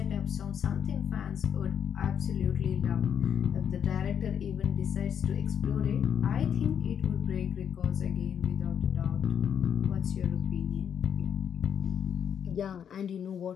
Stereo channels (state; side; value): quieter; right; 8.3 dB